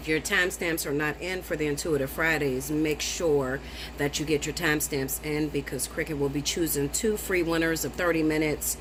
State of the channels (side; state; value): both; identical; correlation 1.00